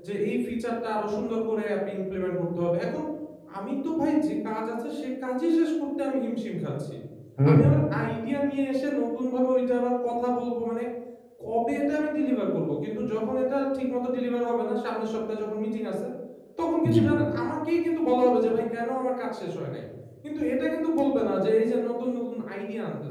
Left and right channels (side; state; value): both; identical; correlation 1.00